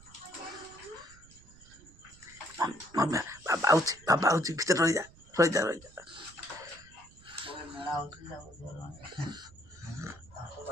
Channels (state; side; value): noise; right; rumble, 23 dB below the sound